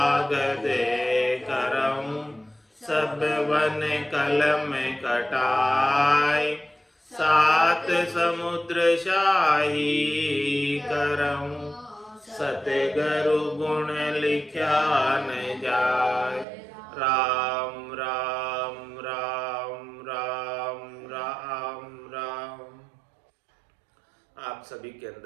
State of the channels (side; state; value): left; drops out; at 16.4 s